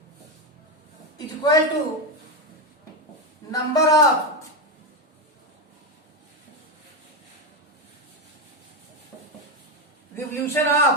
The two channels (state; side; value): normal; both; correlation 0.10